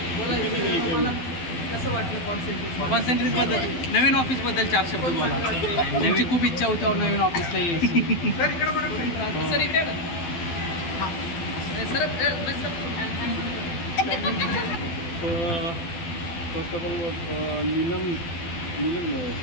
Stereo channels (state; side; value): late; right; 12 ms